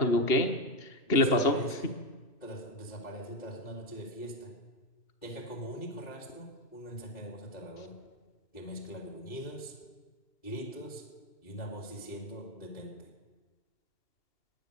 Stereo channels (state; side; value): late; right; 2.9 ms